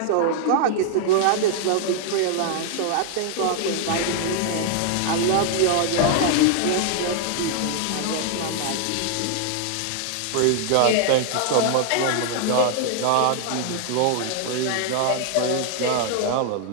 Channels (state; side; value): different; both; correlation 0.00